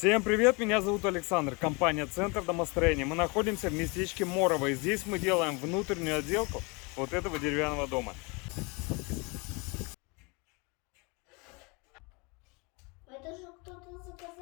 привет, меня зовут Александр, компания Центр домостроения. Мы находимся в местечке Морово, и здесь мы делаем внутреннюю отделку вот этого деревянного дома. Это же кто-то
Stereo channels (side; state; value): right; quieter; 29.3 dB